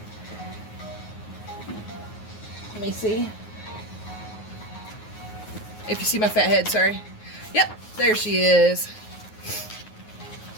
Let me see. If you see my fat head, sorry. Yep, there she is.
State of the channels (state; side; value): late; right; 9.5 ms